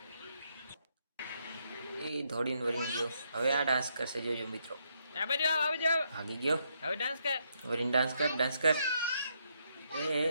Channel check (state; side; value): inverted; both; correlation -0.76